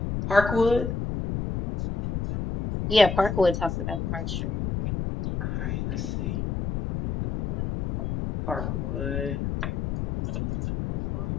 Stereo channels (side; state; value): left; noise; rumble, 3 dB below the sound